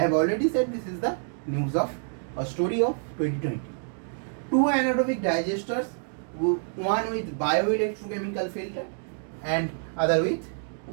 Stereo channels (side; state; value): left; silent; 60 dB below the other